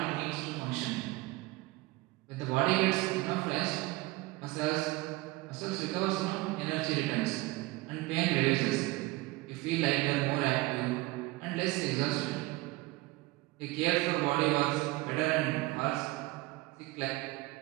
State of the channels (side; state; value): left; quieter; 20.9 dB